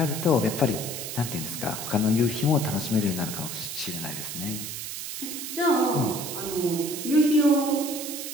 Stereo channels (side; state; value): right; noise; hiss, 6 dB below the sound